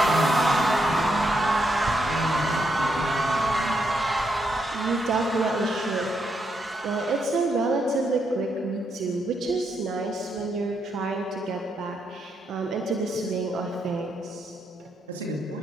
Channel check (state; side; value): normal; both; correlation 0.79